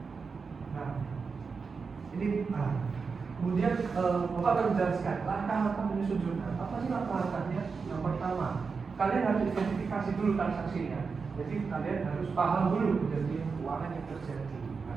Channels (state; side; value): quieter; left; 5.1 dB